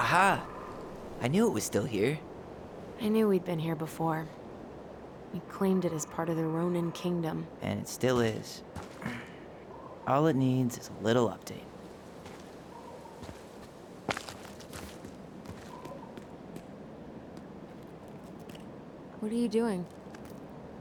I knew it was still here. I knew we'd been here before. We claimed it as part of the Ronin kingdom. And it still is. All it needs is a little update. What are you doing?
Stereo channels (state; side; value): identical; both; correlation 1.00